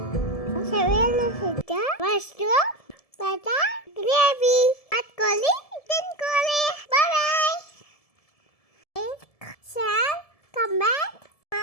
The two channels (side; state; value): right; late; 1.7 ms